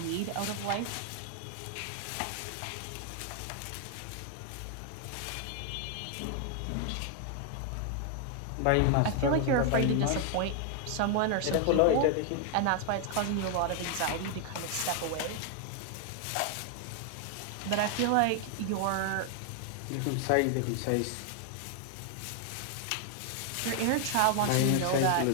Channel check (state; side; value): different; both; correlation 0.00